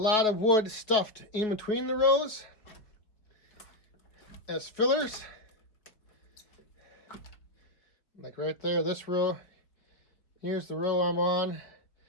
of wood stuffed in between the rows as fillers. Like right there, this row, here's the row I'm on.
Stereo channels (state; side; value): late; right; 4.7 ms